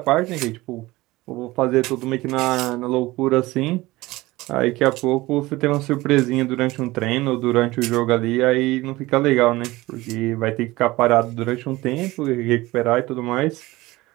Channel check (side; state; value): left; quieter; 19.5 dB